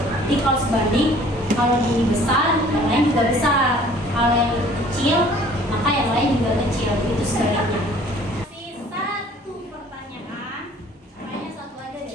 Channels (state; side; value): normal; both; correlation 0.53